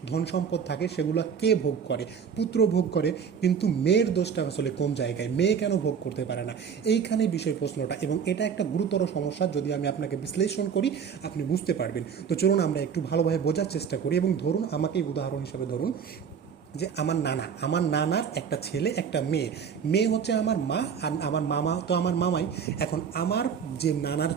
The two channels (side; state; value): left; quieter; 7.0 dB